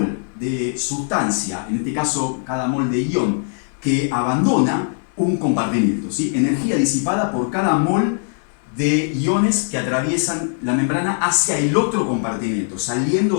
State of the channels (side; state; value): right; silent; 65 dB below the other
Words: de sustancia, en este caso cada mol de ion, que abandona un compartimiento, ¿sí? Energía disipada por cada mol de iones que atraviesan la membrana hacia el otro compartimiento,